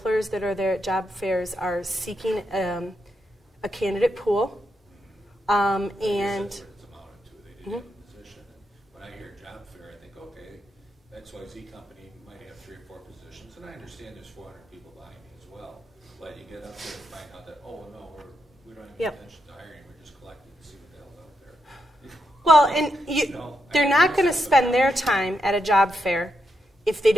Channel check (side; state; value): both; normal; correlation 0.83